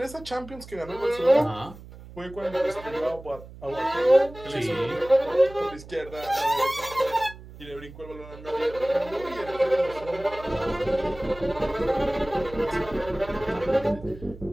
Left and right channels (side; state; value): right; noise; hum, 17 dB below the sound